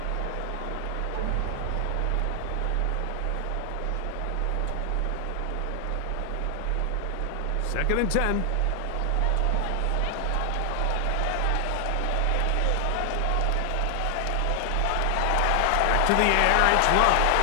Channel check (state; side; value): different; both; correlation 0.00